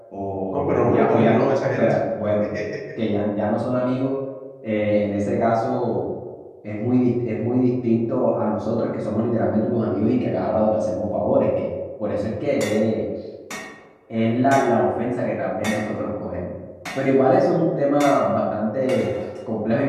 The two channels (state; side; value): identical; both; correlation 1.00